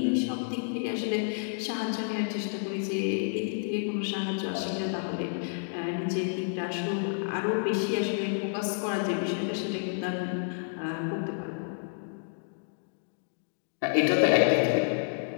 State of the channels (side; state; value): right; silent; digital silence